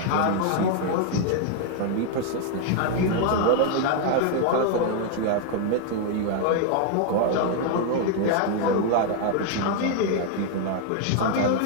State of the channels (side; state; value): both; different; correlation 0.00